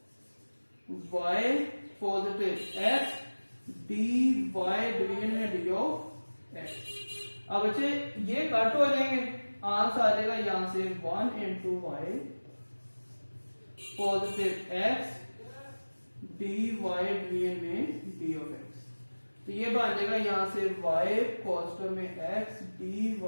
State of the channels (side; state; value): both; inverted; correlation -1.00